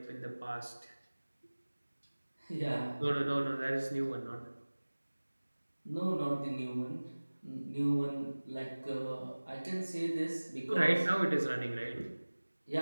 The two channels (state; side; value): inverted; both; correlation -1.00